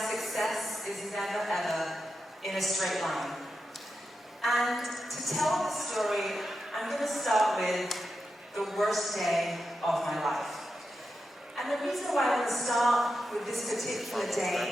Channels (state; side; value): normal; both; correlation 0.88